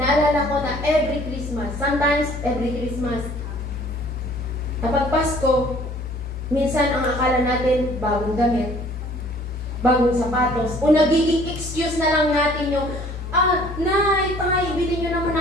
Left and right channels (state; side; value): normal; both; correlation 0.55